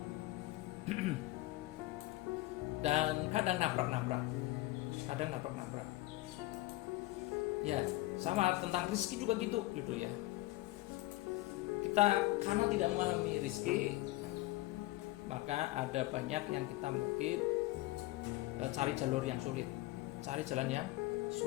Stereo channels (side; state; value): right; quieter; 18.6 dB